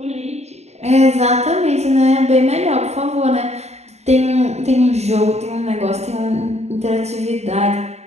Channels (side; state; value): left; late; 0.32 ms